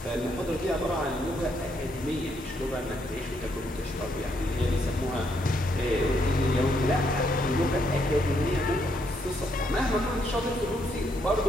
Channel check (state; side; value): normal; both; correlation 0.75